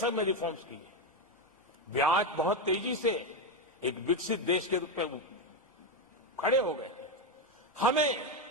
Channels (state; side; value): normal; both; correlation 0.09